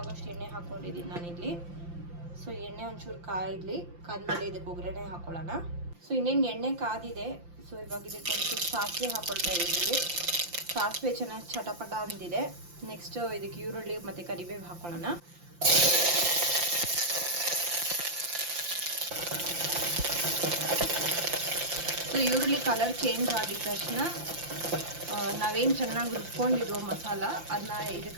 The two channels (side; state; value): left; late; 5.8 ms